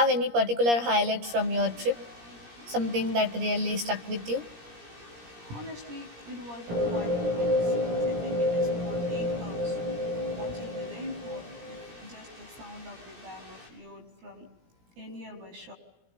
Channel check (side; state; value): left; late; 17 ms